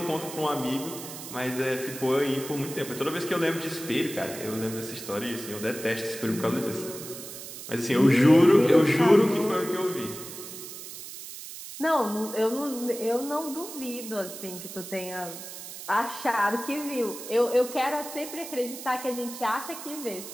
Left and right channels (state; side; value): noise; right; hiss, 11 dB below the sound